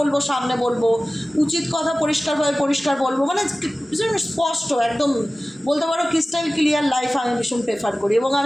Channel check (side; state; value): both; normal; correlation 0.97